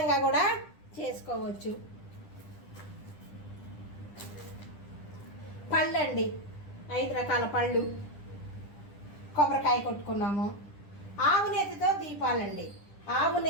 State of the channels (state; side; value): late; right; 10 ms